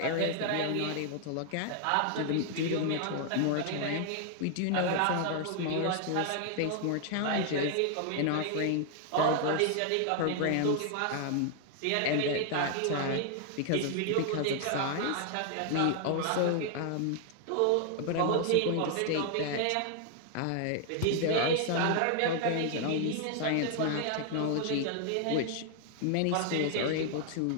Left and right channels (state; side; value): different; both; correlation 0.00